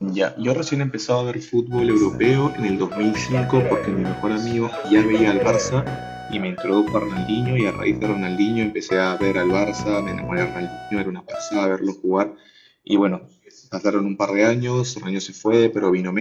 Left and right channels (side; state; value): both; identical; correlation 1.00